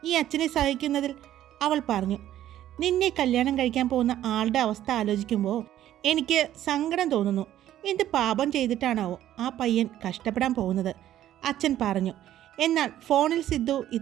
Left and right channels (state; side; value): quieter; left; 12.4 dB